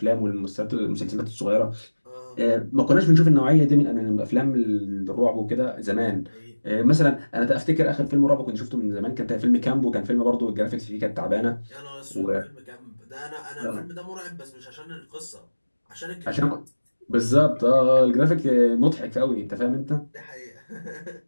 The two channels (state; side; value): inverted; both; correlation -1.00